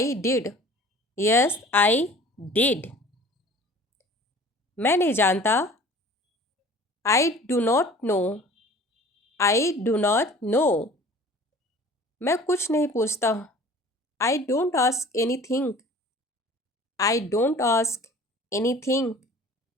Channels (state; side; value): normal; both; correlation 0.46